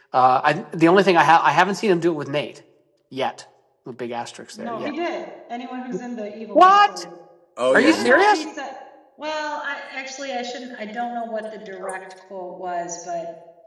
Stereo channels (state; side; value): identical; both; correlation 1.00